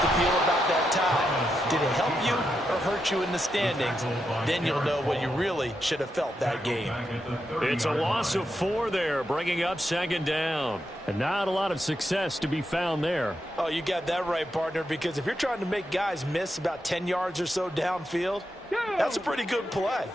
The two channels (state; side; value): normal; both; correlation 0.85